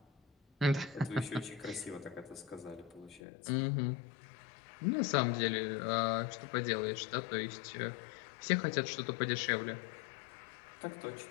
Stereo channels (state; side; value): drops out; right; at 3.2 s